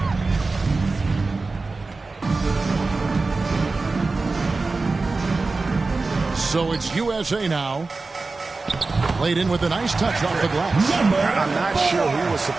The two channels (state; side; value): quieter; left; 3.7 dB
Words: So it's USA now. Played in with a nice touch off the glass. I'm not sure who was